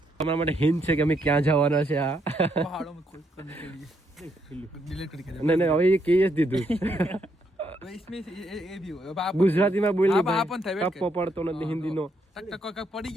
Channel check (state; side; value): normal; both; correlation 0.75